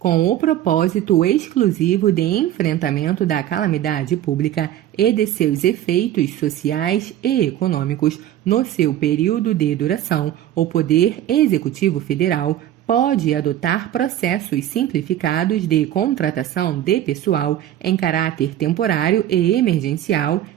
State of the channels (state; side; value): quieter; left; 12.1 dB